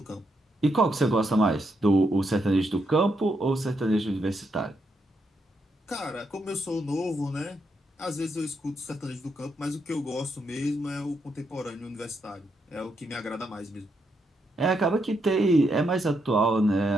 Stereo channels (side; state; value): both; normal; correlation 0.80